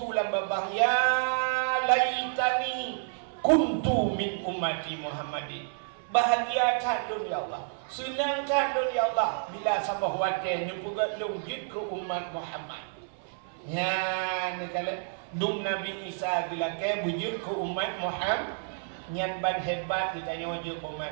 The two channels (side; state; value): left; silent; 58 dB below the other